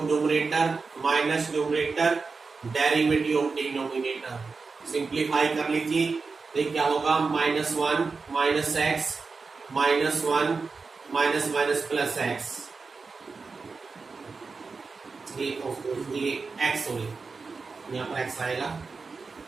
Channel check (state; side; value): quieter; left; 4.5 dB